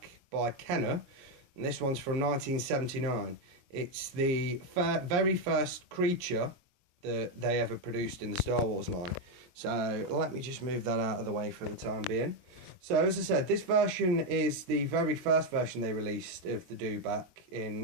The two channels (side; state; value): left; late; 22 ms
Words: by Kenner, and this one's from 1979. It's the very first creature that they ever produced in the Star Wars line. So let me just move that out of the way for the time being. So as I said, this version is the very first version they released of the Dewback in